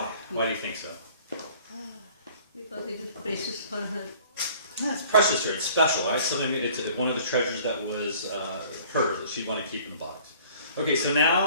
Why do you think so? Because it is precious for her. Yeah, it's precious to her. It's special, right? It's one of the treasures that was hers that she'd want to keep in the box. Okay, so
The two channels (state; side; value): inverted; both; correlation -0.52